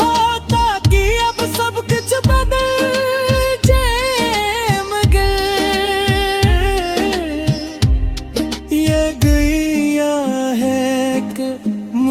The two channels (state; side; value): identical; both; correlation 1.00